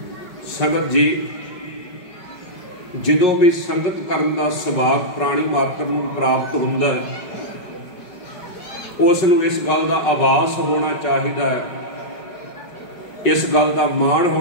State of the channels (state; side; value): late; right; 5.4 ms